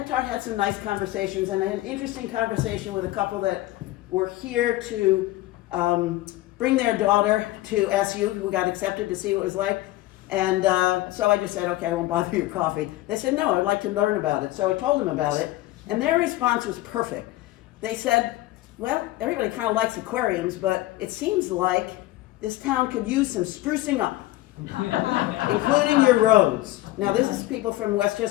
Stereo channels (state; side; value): quieter; right; 17.1 dB